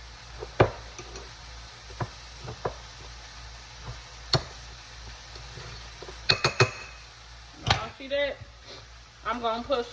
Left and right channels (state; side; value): identical; both; correlation 1.00